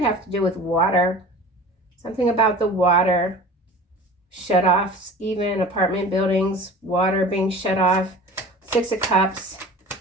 have to do with water. Something about the water. Shut-offs, even apartment buildings, water being shut off. Six of Cups.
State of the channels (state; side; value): normal; both; correlation 0.40